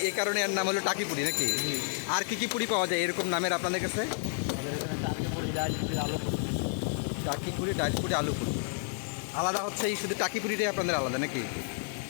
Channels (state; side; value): silent; right; 57 dB below the other